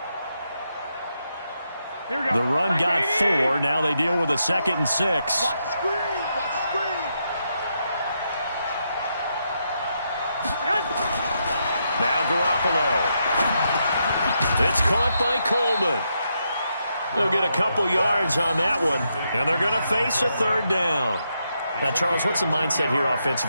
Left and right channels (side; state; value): both; inverted; correlation -0.81